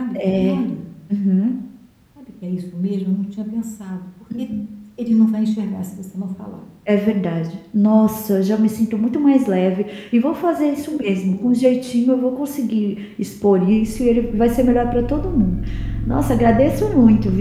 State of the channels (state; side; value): identical; both; correlation 1.00